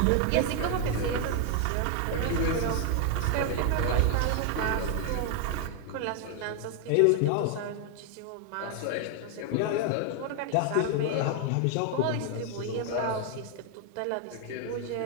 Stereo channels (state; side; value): different; both; correlation 0.00